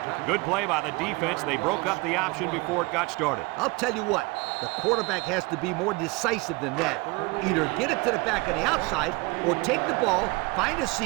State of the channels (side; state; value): left; quieter; 25.2 dB